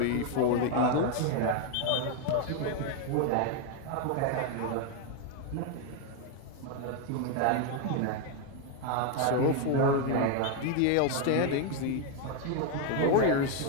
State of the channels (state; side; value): different; both; correlation 0.01